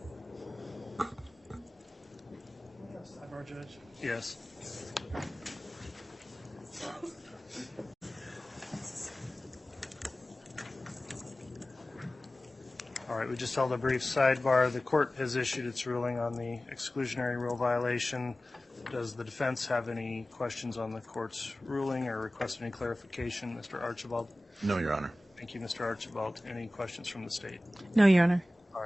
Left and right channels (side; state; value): both; normal; correlation 0.97